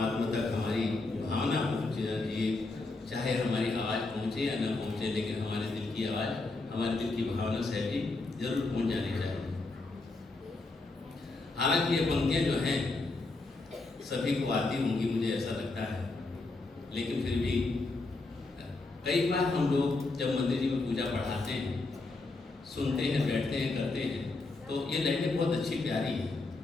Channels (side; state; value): right; quieter; 3.4 dB